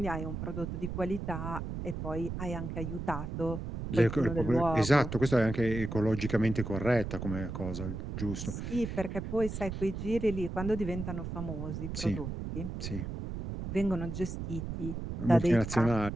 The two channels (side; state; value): right; noise; rumble, 6 dB below the sound